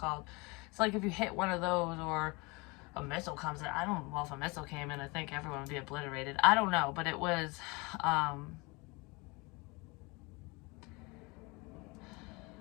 It's like if you hit one of those, or a missile comes in. I don't know, well, if a missile came in, I think everyone would be obliterated. I don't know, but it was, there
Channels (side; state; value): right; quieter; 26.7 dB